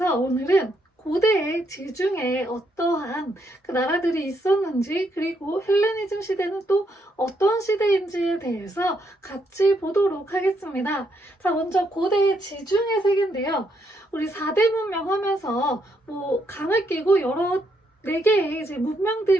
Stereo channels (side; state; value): both; normal; correlation 0.76